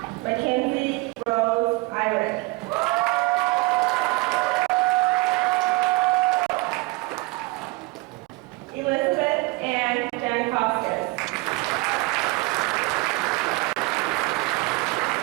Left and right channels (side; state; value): left; quieter; 24.6 dB